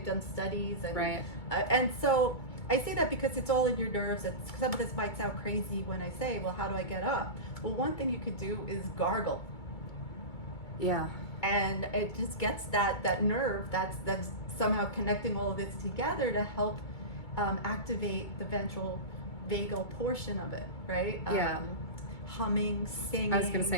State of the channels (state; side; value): late; right; 2.3 ms